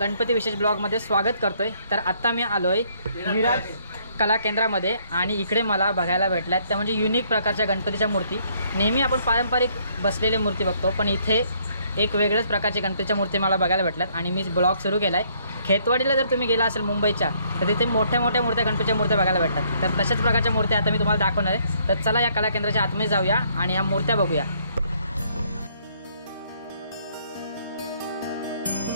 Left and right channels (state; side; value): inverted; both; correlation -0.67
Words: गणपती विशेष ब्लॉगमध्ये स्वागत करतोय। तर आता मी आलोय विराज कला केंद्रामध्ये आणि इकडे मला बघायला भेटल्यात त्या म्हणजे युनिक प्रकारच्या गणपतीच्या मूर्ती। नेहमी आपण पारंपरिक बसलेले मूर्ती बघतो, पण इथे एक वेगळ्याच प्रकारची गणपतीच्या मूर्ती मला बघायला भेटल्यात आणि मी ब्लॉग सुरू केलाय। खेतवाडीला जर तुम्ही गेला असेल मुंबईच्या तर तिथे मोठ्या मोठ्या मूर्त्या गणपतीच्या मूर्त्या बघायला भेटतात। तर तशाच प्रकारच्या मूर्त्या आता मी तुम्हाला दाखवणार आहे। तर चला या कला केंद्राच्या आतमध्ये जाऊया आणि या मूर्त्या बघूया।